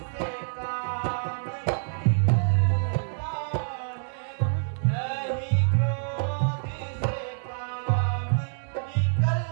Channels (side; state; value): left; silent; digital silence